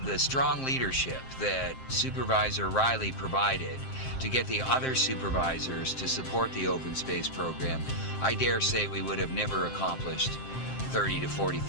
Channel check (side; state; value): right; late; 7.6 ms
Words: the strong leadership that Supervisor Riley provided to get the other supervisors to support the open space program, I dare say we would have never accomplished 30 to